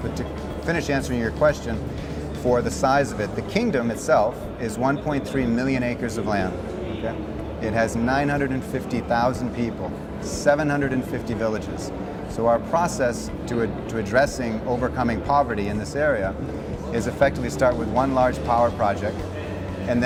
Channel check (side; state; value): both; identical; correlation 1.00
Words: to finish answering your question, for the size of it, the kingdom itself is 1.3 million acres of land. Okay? It has 950,000 people, 750 villages. So our process to addressing overcoming poverty in this area is effectively start with one large power project and